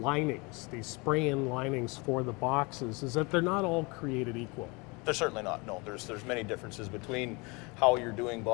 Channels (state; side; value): quieter; right; 28.0 dB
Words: these spray-in linings for the boxes, is that they're not all created equal. They're certainly not. No, there's many differences between how you're doing